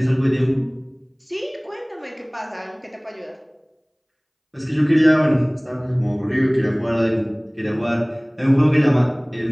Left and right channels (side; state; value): both; identical; correlation 1.00